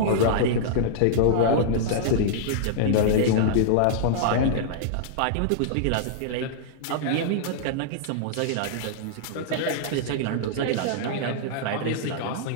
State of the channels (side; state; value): both; different; correlation -0.02